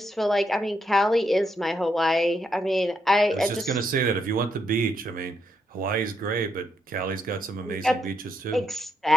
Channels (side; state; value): both; normal; correlation 0.79